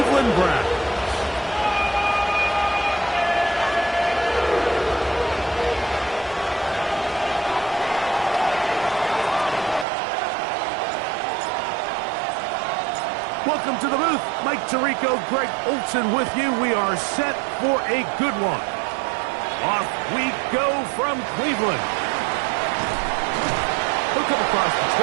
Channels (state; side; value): drops out; left; at 9.9 s